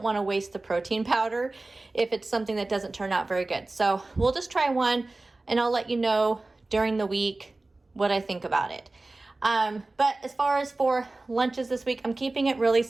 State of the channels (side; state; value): left; quieter; 3.1 dB